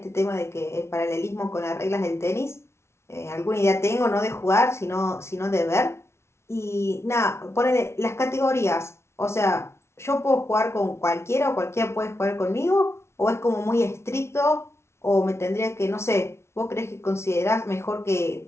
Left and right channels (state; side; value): late; right; 0.13 ms